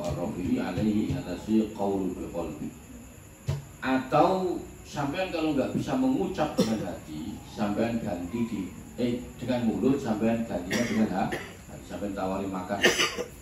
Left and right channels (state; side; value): identical; both; correlation 1.00